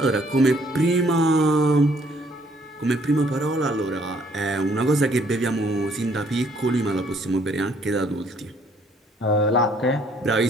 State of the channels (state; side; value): normal; both; correlation 0.64